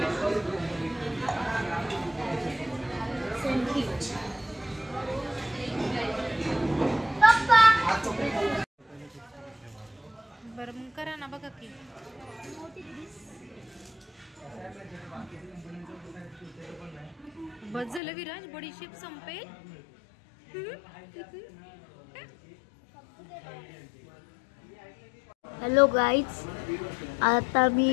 बरं मग करा ना बघा की. बस झालं विराज बडीशेप संपेल. हॅलो गाईज, आता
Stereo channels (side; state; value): right; drops out; at 18.0 s